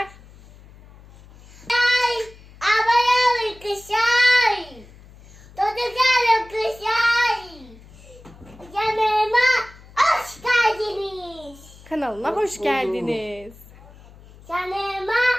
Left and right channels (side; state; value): left; noise; hum, 22 dB below the sound